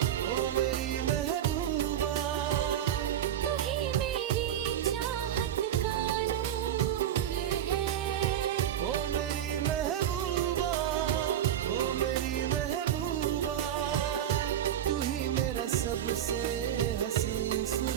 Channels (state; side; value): quieter; left; 10.4 dB